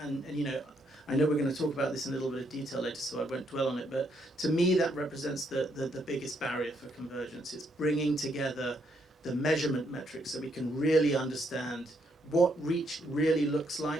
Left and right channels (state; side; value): normal; both; correlation 0.74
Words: And you know, I know we're going to talk about this in a little bit of detail later, so I won't dwell on it. But to me, that represents the biggest barrier for convergence. It's bringing together the measurement metrics so we can really understand what reach really looks